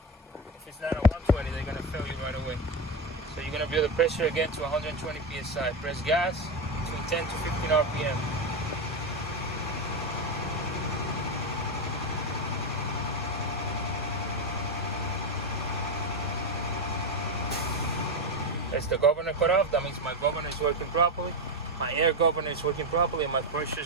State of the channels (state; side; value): normal; both; correlation 0.13